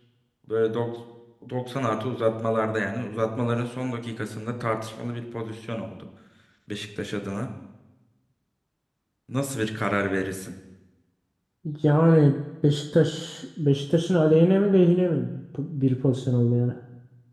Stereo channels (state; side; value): identical; both; correlation 1.00